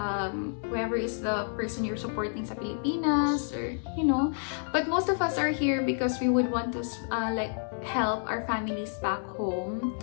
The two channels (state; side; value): silent; right; digital silence